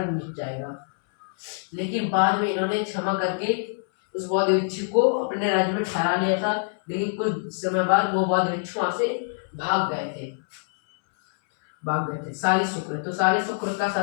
मिट जाएगा, लेकिन बाद में इन्होंने क्षमा करके उस बौद्ध भिक्षु को अपने राज्य में ठहरा लिया था। लेकिन कुछ समय बाद वो बौद्ध भिक्षु वहां से भाग गए थे। साली शुक्र, तो साली शुक्र का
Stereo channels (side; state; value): right; silent; 62 dB below the other